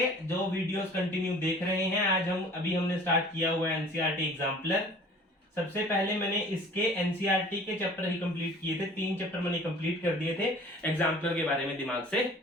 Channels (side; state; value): both; normal; correlation 0.48